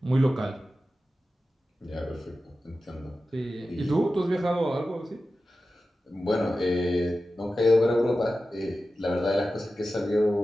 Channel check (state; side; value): normal; both; correlation 0.94